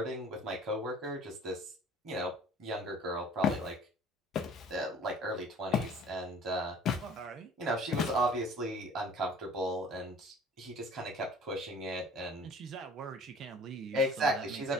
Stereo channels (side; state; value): both; normal; correlation 0.49